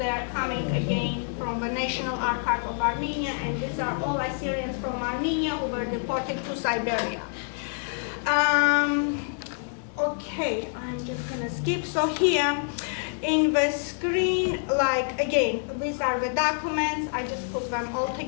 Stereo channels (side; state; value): right; silent; 60 dB below the other